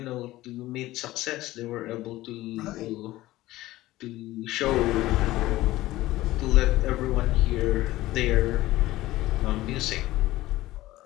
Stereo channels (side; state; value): right; quieter; 16.9 dB